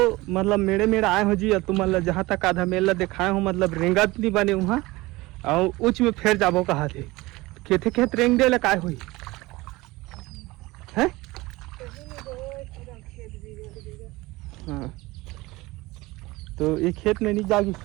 मतलब मेरे आए हो जी और तुम मतलब जहाँ तक आधा मेला दिखाए हो मतलब रेंगत नहीं बने वहाँ और उच में फिर जाबो कहा थे खेते खेत रेंग दे लकाय हुई है। हाँ तो एक खेत में नहीं जागी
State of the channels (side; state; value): left; quieter; 20.9 dB